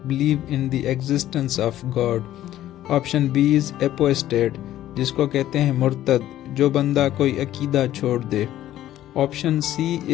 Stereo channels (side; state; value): right; quieter; 13.2 dB